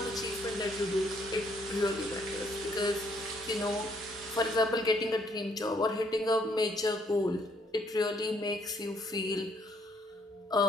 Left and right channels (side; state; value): both; normal; correlation 0.68